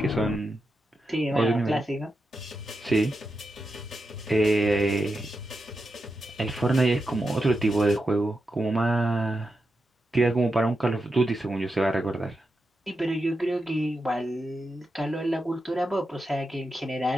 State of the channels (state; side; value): normal; both; correlation 0.88